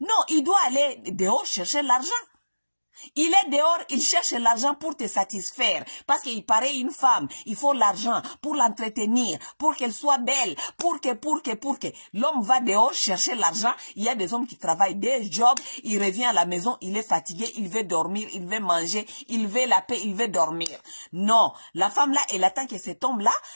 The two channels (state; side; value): inverted; both; correlation -1.00